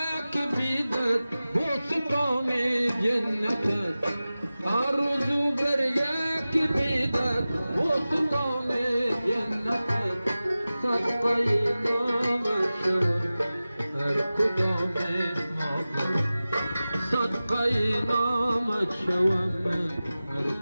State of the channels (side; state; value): both; inverted; correlation -0.96